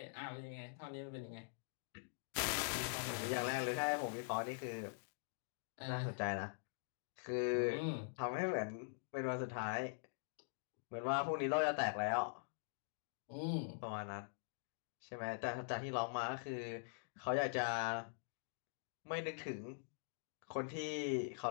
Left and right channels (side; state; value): right; silent; digital silence